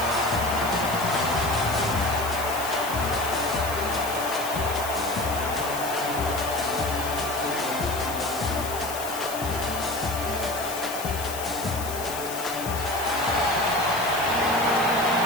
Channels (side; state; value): left; noise; hiss, 9 dB below the sound